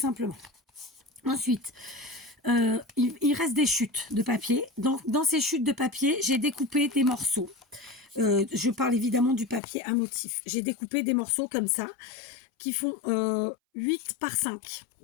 Ensuite, il reste des chutes de papier. Dans ces chutes de papier, j'ai découpé des morceaux. Je parle évidemment du papier à motif. J'ai découpé des morceaux comme ça, qui font 8 par 5,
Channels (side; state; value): right; drops out; at 9.6 s